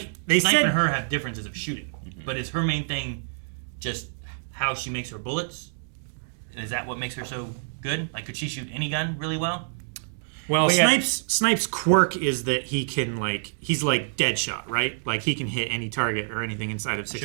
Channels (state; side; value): silent; left; digital silence